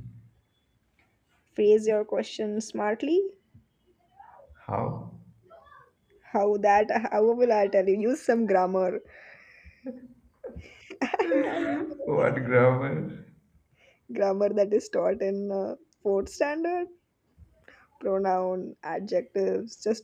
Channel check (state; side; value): identical; both; correlation 1.00